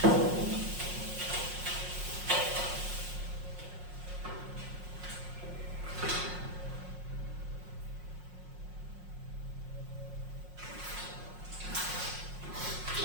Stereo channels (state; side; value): late; left; 5.5 ms